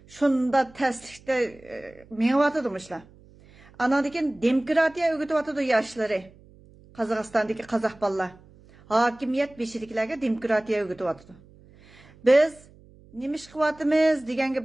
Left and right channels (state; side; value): noise; right; hum, 25 dB below the sound